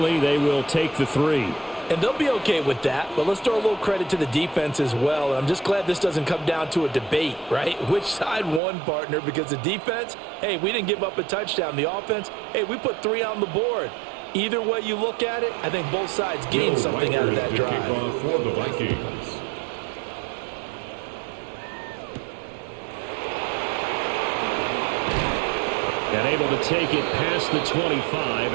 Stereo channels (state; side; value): drops out; left; at 8.6 s